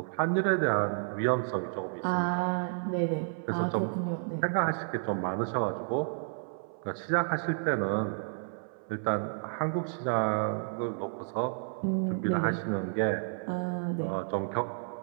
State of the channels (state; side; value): silent; left; 57 dB below the other